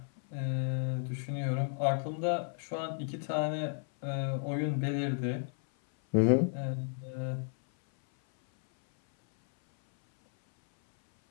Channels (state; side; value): silent; right; 56 dB below the other